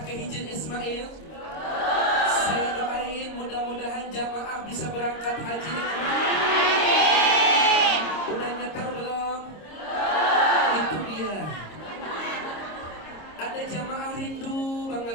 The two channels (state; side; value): late; right; 26 ms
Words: ke Hijr Ismail? Saya doain mudah-mudahan jamaah bisa berangkat haji dengan udah nyetar belum? Itu dia. Ada jamaah rindu